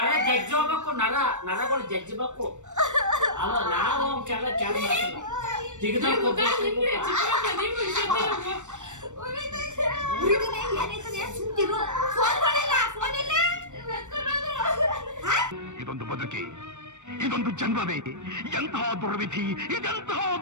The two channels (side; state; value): left; late; 0.84 ms